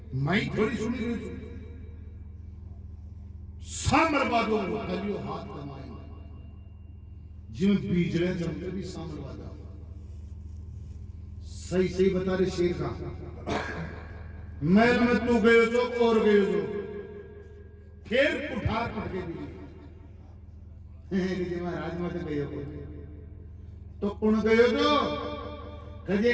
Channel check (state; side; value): identical; both; correlation 1.00